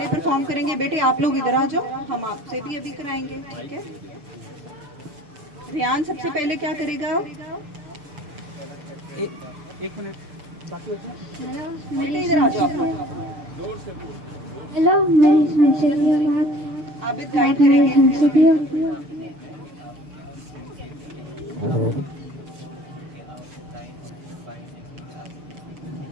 परफॉर्म करेंगे। बेटे आप लोग इधर आ जाओ, हम आपसे भी अभी कराएंगे, ठीक है? रेयान सबसे पहले क्या करेगा? एक मिनट बाकी बेटे इधर आ जाओ आप लोग। हेलो, मेरी संस्कृति बात आबिद गाइड करेंगे।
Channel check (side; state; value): left; late; 6.8 ms